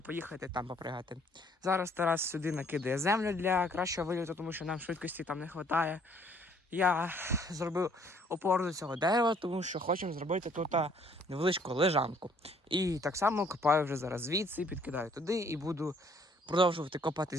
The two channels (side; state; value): both; normal; correlation 0.62